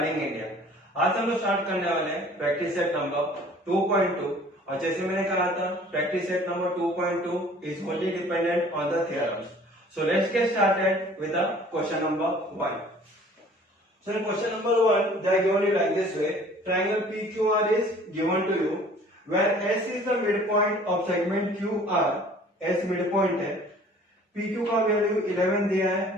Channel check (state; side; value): normal; both; correlation 0.51